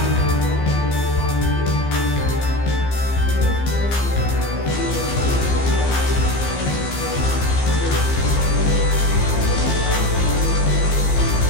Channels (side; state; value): right; late; 15 ms